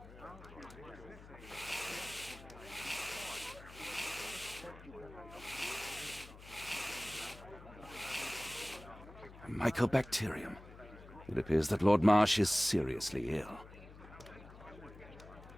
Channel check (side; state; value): left; noise; hum, 17 dB below the sound